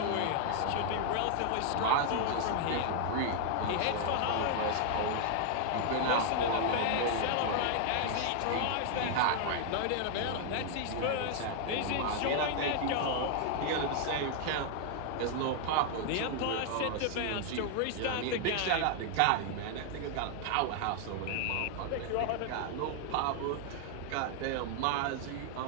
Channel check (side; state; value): both; different; correlation 0.00